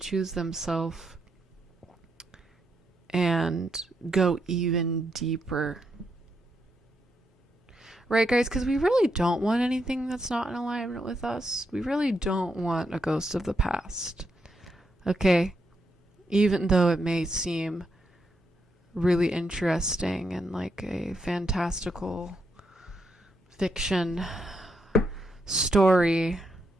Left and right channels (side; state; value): both; normal; correlation 0.81